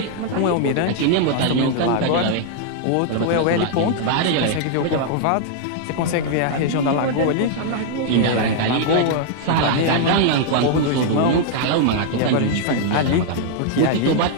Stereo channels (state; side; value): different; both; correlation -0.01